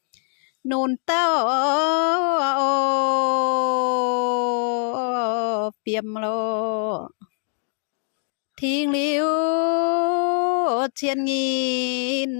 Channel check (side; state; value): right; silent; 57 dB below the other